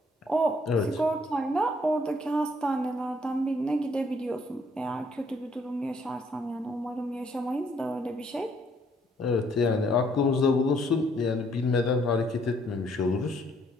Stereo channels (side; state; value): both; normal; correlation 0.67